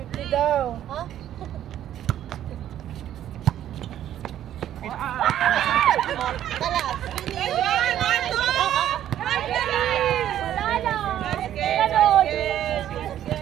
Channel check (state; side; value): quieter; left; 11.4 dB